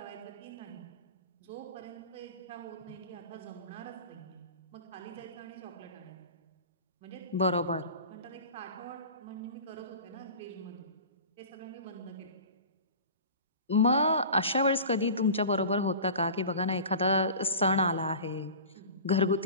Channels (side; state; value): both; inverted; correlation -0.37